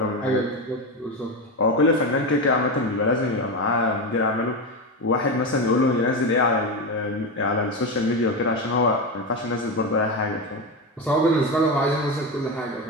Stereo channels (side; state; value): both; normal; correlation 0.15